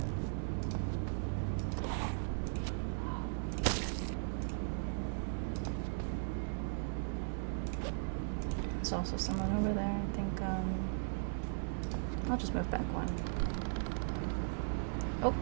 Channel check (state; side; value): silent; left; digital silence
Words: There's also someone over there. I think I'll just move back one. Oh.